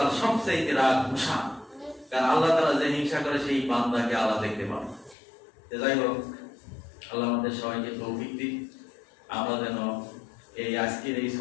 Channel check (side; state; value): right; drops out; at 5.2 s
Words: সবচেয়ে রাগ, গুসা। কারণ আল্লাহ তাআলা যে হিংসা করে সেই বান্দাকে আল্লাহ দেখতে পাবে। যাই হোক, আল্লাহ আমাদের সবাইকে তৌফিক দিন, আমরা যেন এই আজকের এই